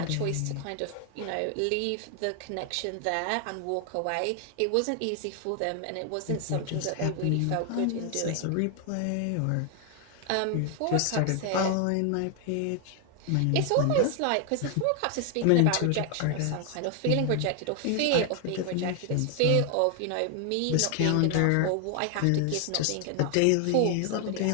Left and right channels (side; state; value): both; different; correlation 0.00